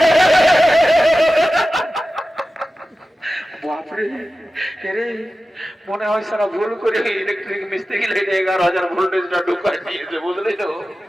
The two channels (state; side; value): normal; both; correlation 0.94